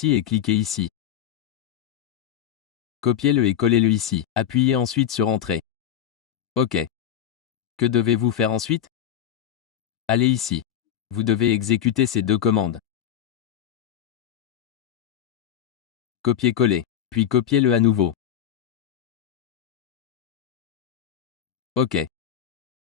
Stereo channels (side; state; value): right; quieter; 10.1 dB